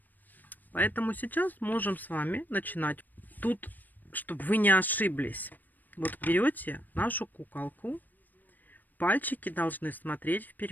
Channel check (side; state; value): right; late; 0.087 ms